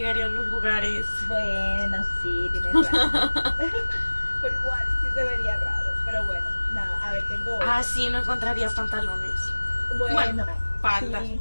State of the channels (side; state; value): both; inverted; correlation -1.00